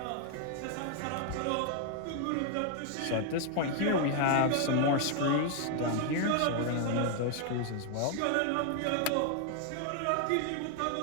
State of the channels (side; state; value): both; different; correlation 0.00